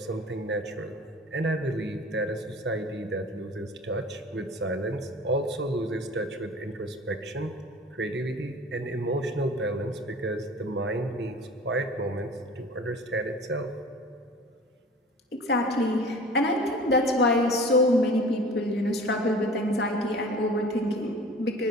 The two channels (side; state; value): both; normal; correlation 0.42